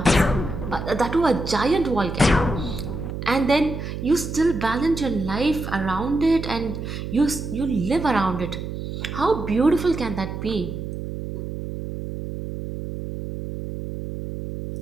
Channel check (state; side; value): noise; right; hum, 7 dB below the sound